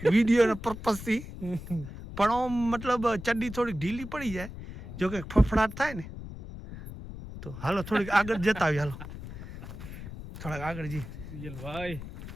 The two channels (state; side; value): noise; left; rumble, 11 dB below the sound